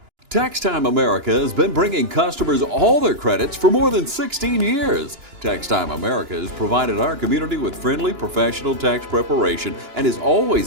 Tax Time America has been bringing customers all their credits for more than 16 years. Tax Time America has provided our community with friendly, professional tax preparation and is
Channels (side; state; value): left; late; 2.9 ms